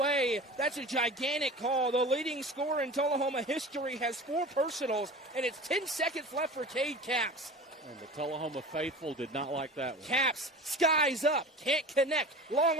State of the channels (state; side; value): normal; both; correlation 0.35